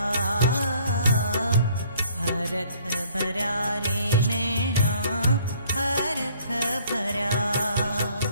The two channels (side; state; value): both; inverted; correlation -0.59